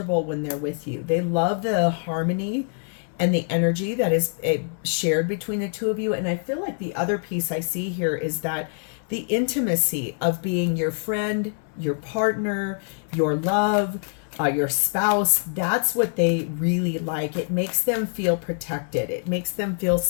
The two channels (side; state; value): right; silent; digital silence